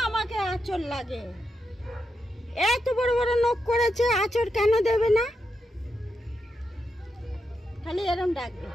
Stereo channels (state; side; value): normal; both; correlation 0.85